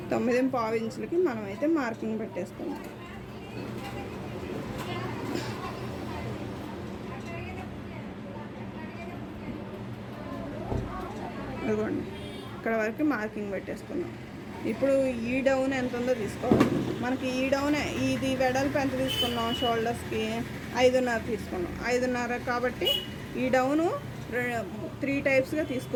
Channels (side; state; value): both; identical; correlation 1.00